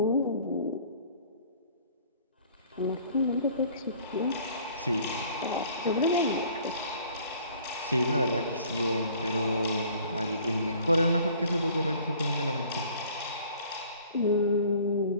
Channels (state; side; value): inverted; both; correlation -0.53